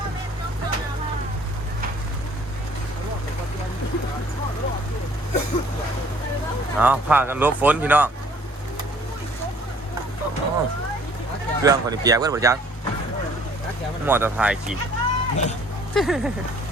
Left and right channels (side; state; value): both; normal; correlation 0.57